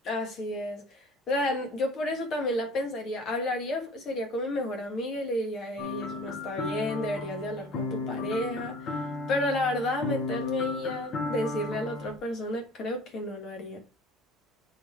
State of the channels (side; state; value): both; normal; correlation 0.46